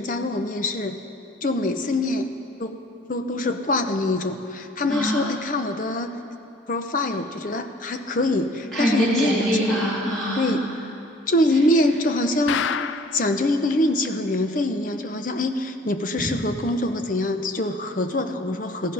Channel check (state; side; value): normal; both; correlation 0.52